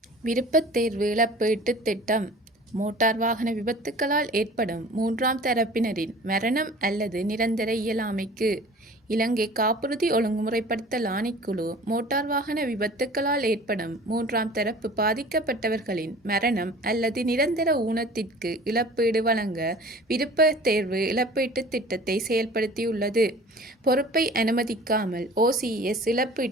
விருப்பத் தேர்வு இழப்பீட்டுத் திட்டம். மோட்டார் வாகன விபத்துக்களால் ஏற்படும் மூன்றாம் தரப்பினரின் மரணம் அல்லது நிரந்தர இயலாமைக்கு இலங்கை காப்புறுதி ஒழுங்குமுறைப்படுத்தல் ஆணைக்குழு மோட்டார் வாகன விபத்துக்களால் ஏற்படும் மூன்றாம் தரப்பு பாதிக்கப்பட்டவர்களின் மரணம் அல்லது நிரந்தர ஊனத்திற்கு இழப்பீடு வழங்க விருப்பத் தேர்வு இழப்பீட்டுத் திட்டத்தை செயல்படுத்தியுள்ளது. பொறுப்பை அனுமதிக்காமல் OCS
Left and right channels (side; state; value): both; normal; correlation 0.45